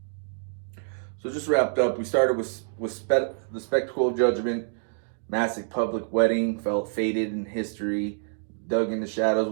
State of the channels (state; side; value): silent; left; digital silence